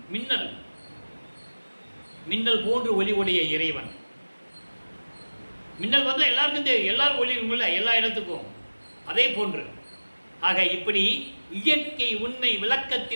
மின்னல் போன்று ஒளி உடைய இறைவன். மின்னல் வந்தால் எல்லாருக்கும் தெரியும், எல்லாரும் ஒளி இருக்கும்ல எல்லா இடத்துக்கும். அதே போன்று ஆக இப்படி இயற்கை உண்மை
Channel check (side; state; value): both; inverted; correlation -1.00